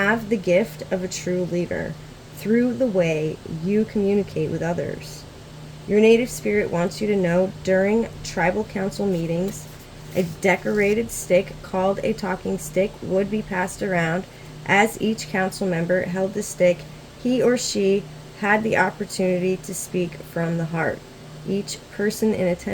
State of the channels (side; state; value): both; identical; correlation 1.00